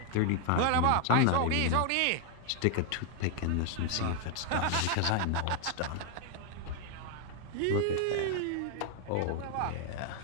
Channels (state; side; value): different; both; correlation 0.00